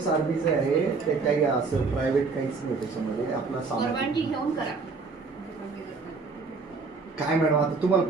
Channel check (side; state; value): left; quieter; 4.4 dB